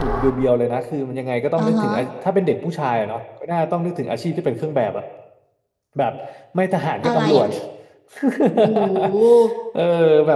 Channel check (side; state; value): both; identical; correlation 1.00